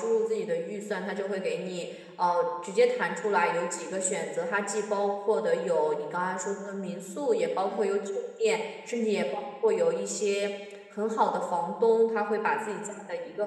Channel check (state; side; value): identical; both; correlation 1.00